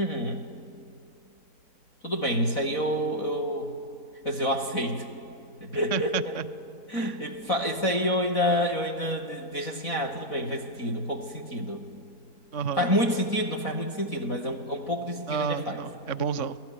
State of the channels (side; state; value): right; late; 4.1 ms